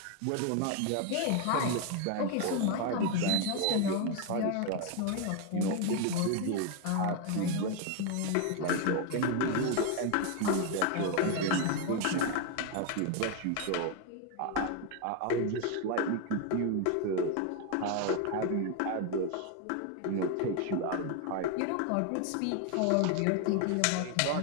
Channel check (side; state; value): both; different; correlation 0.01